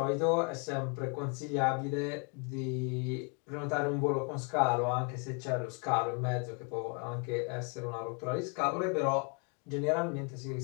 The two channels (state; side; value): quieter; right; 36.0 dB